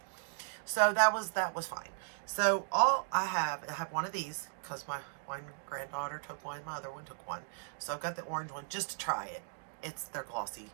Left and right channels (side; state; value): left; silent; digital silence